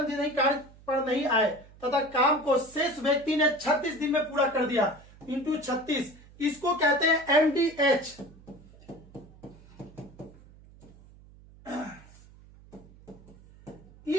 दिन ही कार्य पर नहीं आए तथा काम को शेष व्यक्ति ने 36 दिन में पूरा कर दिया, इंटू 36। इसको कहते हैं MDH।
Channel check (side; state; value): right; noise; hum, 23 dB below the sound